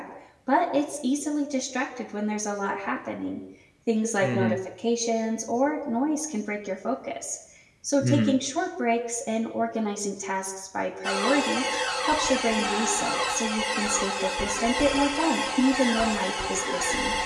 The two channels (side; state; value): both; identical; correlation 1.00